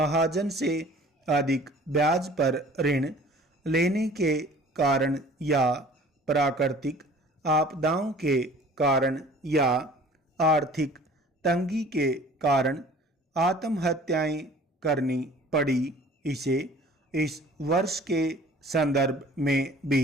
से अधिक ब्याज पर ऋण लेने के कारण या प्राकृतिक आपदाओं के कारण या आर्थिक तंगी के कारण आत्महत्याएं करनी पड़ी, इसे इस वर्ष के संदर्भ में भी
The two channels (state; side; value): normal; both; correlation 0.49